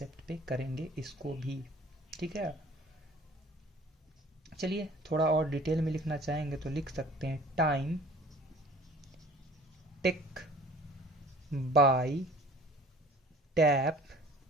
पे करेंगे इसको भी, ठीक है। चलिए थोड़ा और डिटेल में लिखना चाहेंगे तो लिख सकते हैं time take by tap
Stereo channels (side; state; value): both; normal; correlation 0.49